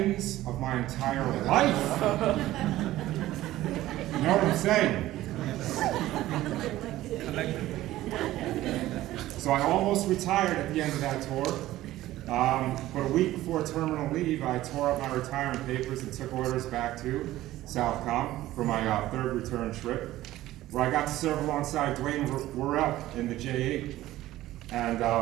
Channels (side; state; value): left; quieter; 15.4 dB